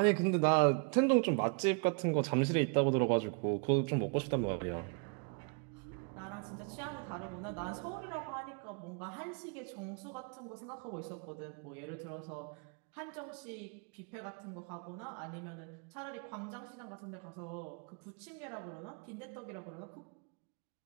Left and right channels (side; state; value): left; quieter; 37.5 dB